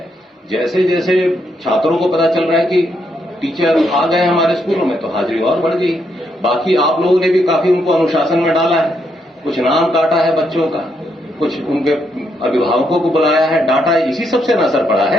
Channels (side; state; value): both; normal; correlation 0.77